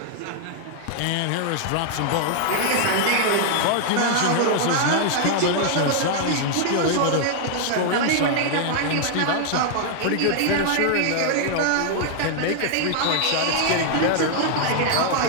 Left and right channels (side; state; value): both; different; correlation 0.00